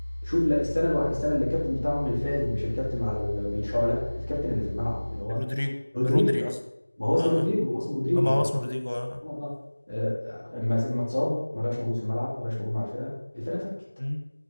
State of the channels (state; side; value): inverted; both; correlation -1.00